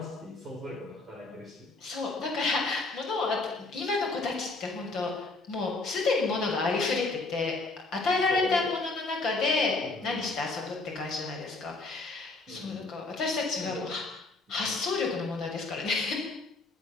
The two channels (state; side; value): quieter; right; 3.4 dB